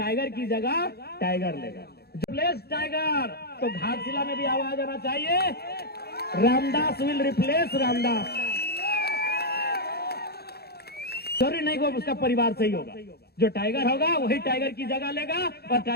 की जगह टाइगर लेगा, रिप्लेस टाइगर। तो घाटशिला में भी आवाज आना चाहिए, रामदास विल रिप्लेस रामदास। जरूरी नहीं को उसका परिवार सही होगा, जो टाइगर होगा वही टाइगर की जगह लेगा, और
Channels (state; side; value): late; right; 0.46 ms